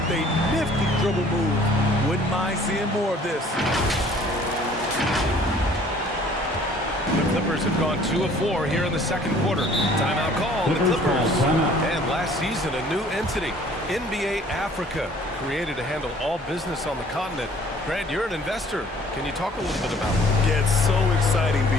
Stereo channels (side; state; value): both; normal; correlation 0.54